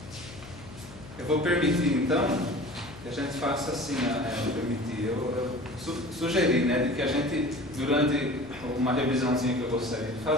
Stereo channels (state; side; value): noise; left; hum, 17 dB below the sound